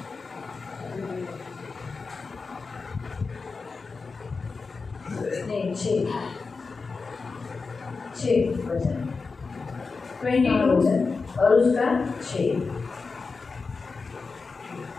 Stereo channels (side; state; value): right; quieter; 4.4 dB